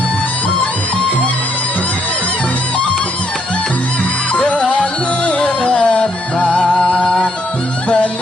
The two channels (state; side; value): normal; both; correlation 0.72